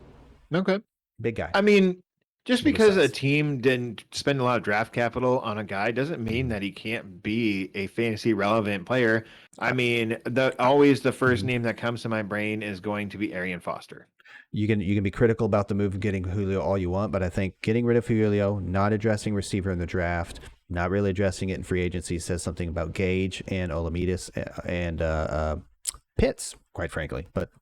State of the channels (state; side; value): identical; both; correlation 1.00